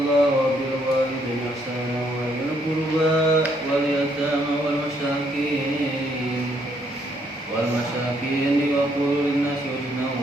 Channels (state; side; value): normal; both; correlation 0.71